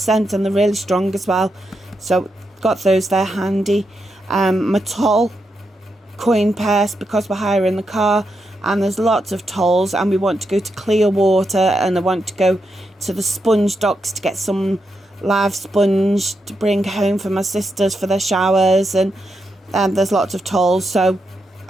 and they're really strong as well. So got those there handy. My toll coin purse, because we're hiring the car and there's lots of tolls, and we want to go to Clearwater, and I want to go to the sponge docks to get some live sponge to bring home for my sisters for their showers, and there's lots of tolls, so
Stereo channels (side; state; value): both; normal; correlation 0.84